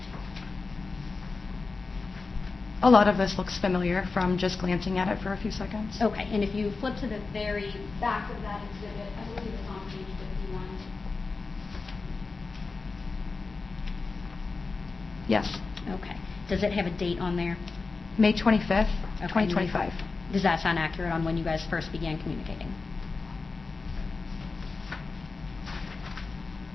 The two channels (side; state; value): right; quieter; 4.1 dB